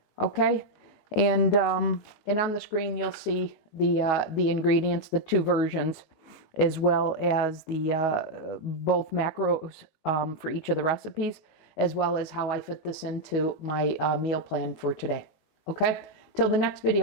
Okay, and on the screen you'll see the ingredients, the two versions, as well as the both macros for each of the recipes, as well as how I fit this into my meal plan for today. Okay, till the next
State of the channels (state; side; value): late; right; 19 ms